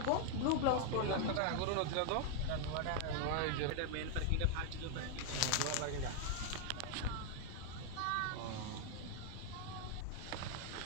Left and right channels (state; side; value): different; both; correlation 0.00